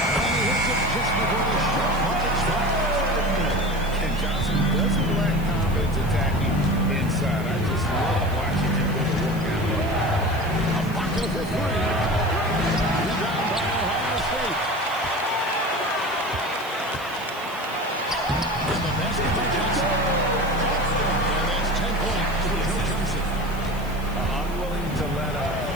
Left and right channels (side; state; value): right; noise; hiss, 20 dB below the sound